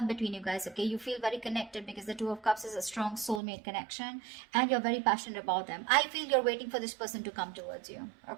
between you guys, okay? You feel very connected because the Two of Cups is a strong soulmate connection and you're very passionate about them. I feel you're waiting for this person to come towards you,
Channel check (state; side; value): drops out; left; at 3.4 s